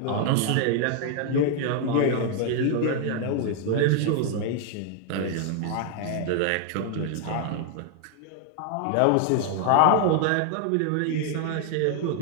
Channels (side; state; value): both; different; correlation 0.00